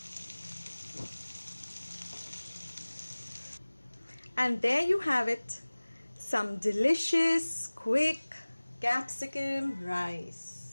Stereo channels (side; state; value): both; inverted; correlation -1.00